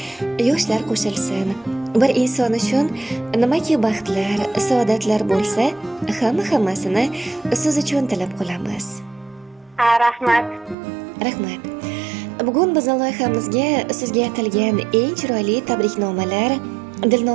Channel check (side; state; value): left; drops out; at 10.8 s